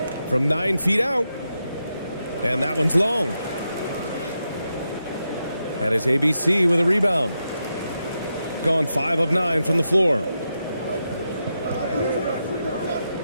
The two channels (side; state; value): both; inverted; correlation -0.86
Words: from 9 feet out. And that one's long. And it's ABC with a rebound. Gone 5 of 9 from the floor.